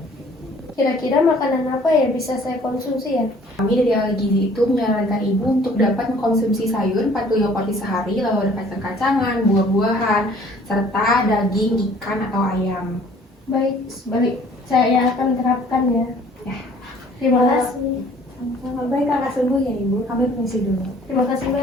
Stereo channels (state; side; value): normal; both; correlation 0.55